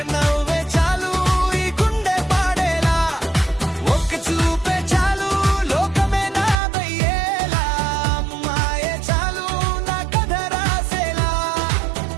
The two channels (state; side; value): drops out; left; at 6.6 s